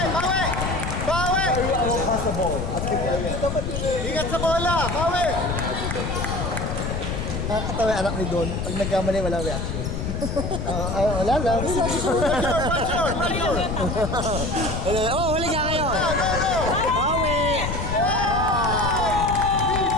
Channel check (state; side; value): noise; left; rumble, 3 dB below the sound